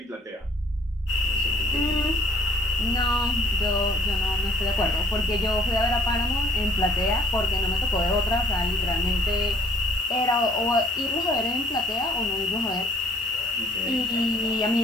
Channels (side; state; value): both; normal; correlation 0.57